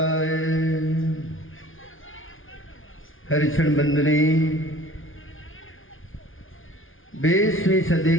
हरिक्षण बंदनी 20वीं सदी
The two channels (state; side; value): late; right; 0.58 ms